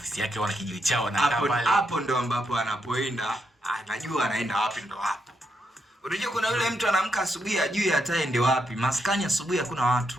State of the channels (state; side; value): normal; both; correlation 0.81